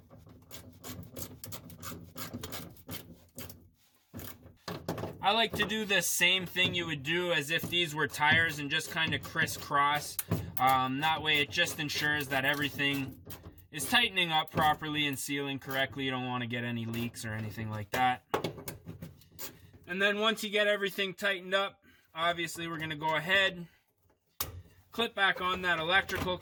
I like to do the same thing you would do as if these were tires and just kind of crisscross. That way it just ensures that everything is tightening up properly and sealing correctly. You don't want to get any leaks or anything like that. And then once you get everything tightened up, obviously we're going to go ahead, clip back on that electrical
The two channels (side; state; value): both; identical; correlation 1.00